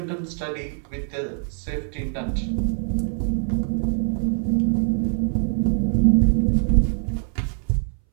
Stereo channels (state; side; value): silent; left; 61 dB below the other